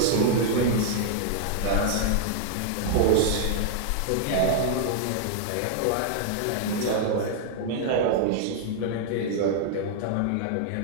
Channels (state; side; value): different; both; correlation -0.01